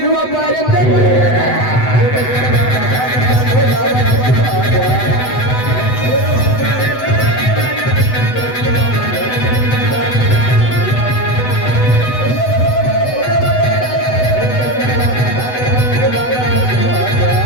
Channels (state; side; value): late; right; 8.0 ms